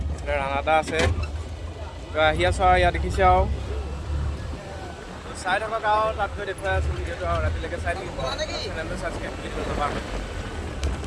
এইফালে ৰাণাদা আছে। আহি আছোঁ আৰু ইয়াত দেখিছে আৰু চাই থাকক আৰু তাত গৈ দেখুৱাই আছোঁ ভিডিঅ'টো আৰু ৰাতিলৈকে চাই থাকিব। চেনেলটো ছাবস্ক্ৰাইব কৰি দিব নাপাহৰিব।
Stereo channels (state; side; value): identical; both; correlation 1.00